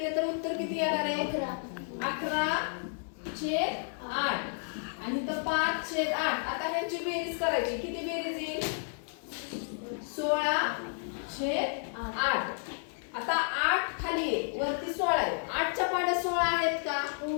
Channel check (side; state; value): right; silent; 57 dB below the other